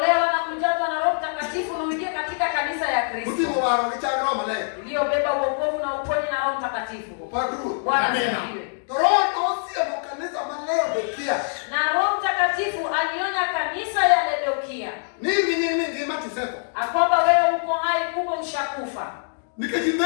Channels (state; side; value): silent; right; digital silence